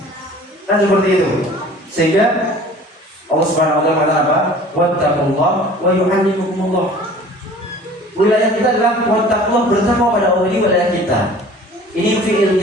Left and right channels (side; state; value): both; normal; correlation 0.46